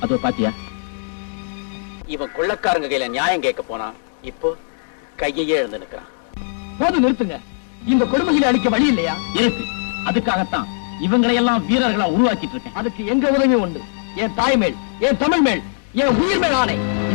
அதோ பாத்தியா, இவன் கொள்ளக்காரங்க கையில நியாயம் கேட்க போனா இப்போ கையையே எழுந்து நிற்கிறான். போது நிறுத்துங்க. இந்த கொடுமைகளை அளிக்க வழி இல்லையா? இருக்கு. அதுக்காகத்தான் இவங்களை எல்லாம் வீரர்களா உருவாக்கிட்டு இருக்கேன். அதுக்கு எங்க உதவி உண்டு. என் தாய் மேல், என் தமிழ் மேல், என் உயிர் மேல் ஆணை.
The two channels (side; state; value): right; silent; digital silence